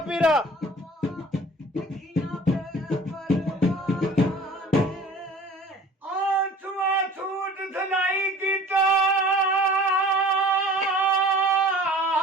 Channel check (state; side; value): normal; both; correlation 0.46